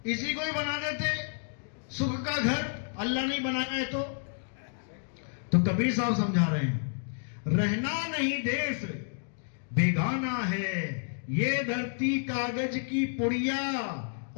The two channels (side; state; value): right; silent; digital silence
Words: इसी को ही बना देते सुख का घर, अल्लाह नहीं बनाया है तो कबीर साहब समझा रहे हैं, रहना नहीं देश बेगाना है, ये धरती कागज की पुड़िया,